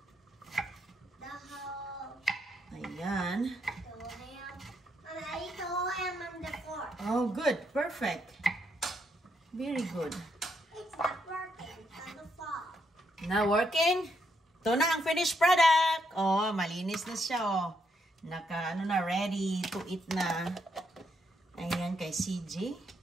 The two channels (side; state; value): both; normal; correlation 0.77